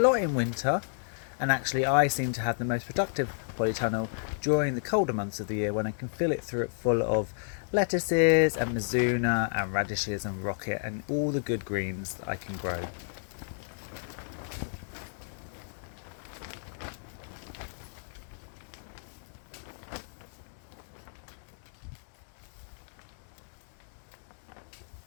in winter, and actually I seem to have the most productive polytunnel during the colder months of the year when I can fill it full of lettuces and mizuna and radishes and rocket and all the good greens that I can grow.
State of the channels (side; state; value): right; silent; 57 dB below the other